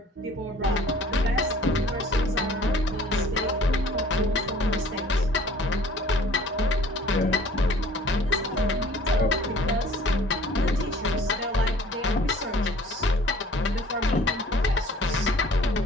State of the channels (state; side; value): normal; both; correlation 0.51